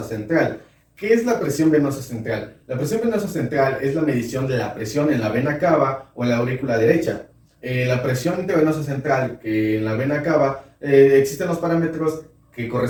central. ¿Qué es la presión venosa central? La presión venosa central es la medición de la presión en la vena cava o en la aurícula derecha. La presión intravenosa central, que en la vena cava, existen los parámetros que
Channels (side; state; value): both; identical; correlation 1.00